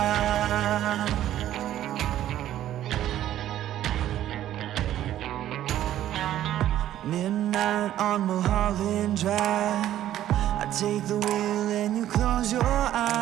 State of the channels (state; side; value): quieter; left; 12.4 dB